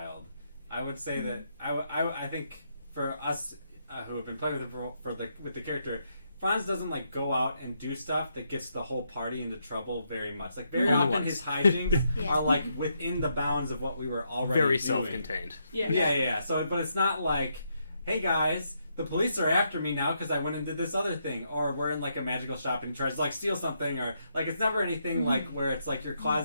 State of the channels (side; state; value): both; inverted; correlation -0.78